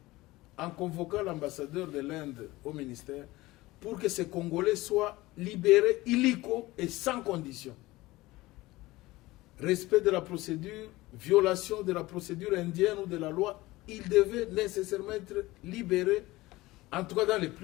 en convoquant l'ambassadeur de l'Inde au ministère, pour que ces Congolais soient libérés illico et sans condition. Respect de la procédure, violation de la procédure indienne ou de la loi, ils devaient nécessairement être libérés, en tout cas dans les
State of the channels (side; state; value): right; quieter; 19.2 dB